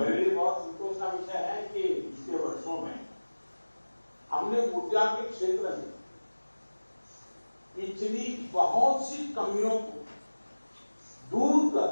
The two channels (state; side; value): inverted; both; correlation -1.00